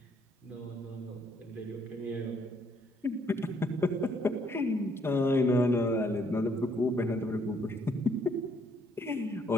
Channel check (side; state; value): both; normal; correlation 0.68